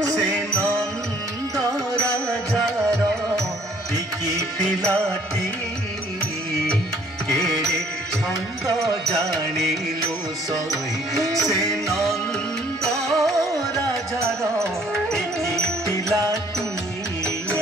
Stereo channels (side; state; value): both; normal; correlation 0.60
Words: से नंद राजार टिकी पिलाटी केड़े छंद जानिलु सही से नंद राजार टिकी पिलाटी